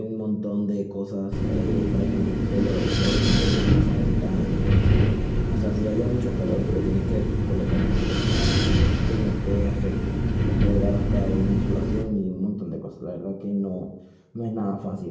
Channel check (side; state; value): both; identical; correlation 1.00